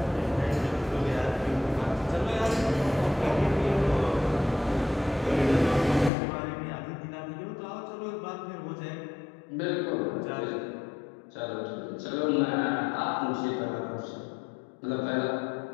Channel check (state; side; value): drops out; right; at 6.1 s